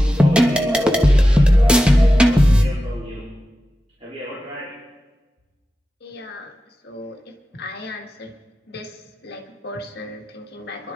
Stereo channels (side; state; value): both; normal; correlation 0.93